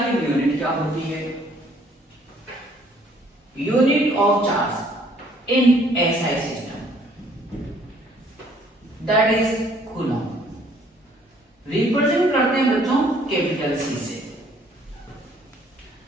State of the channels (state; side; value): normal; both; correlation 0.61